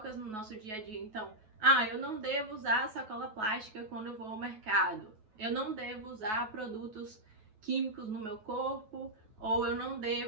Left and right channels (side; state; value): left; late; 9.3 ms